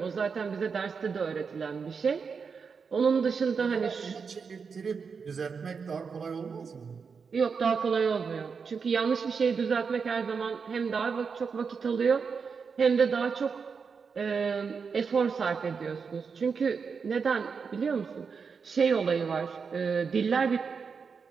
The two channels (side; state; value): left; quieter; 5.6 dB